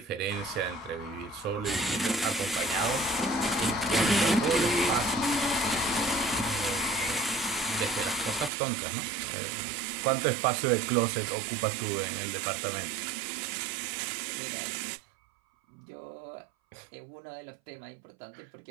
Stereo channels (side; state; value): left; drops out; at 8.5 s